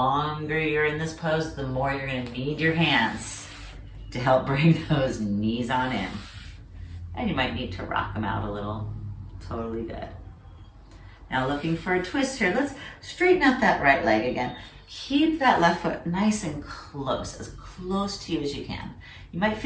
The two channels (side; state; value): both; identical; correlation 1.00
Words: you're in this pose, the more you're going to need your hands to help bring those knees on in. And you might need to rock them out a little. Totally good. Now looking for a twist here. Let's straighten out that right leg again. Keep that left foot nice and close, as close to you as you can. You might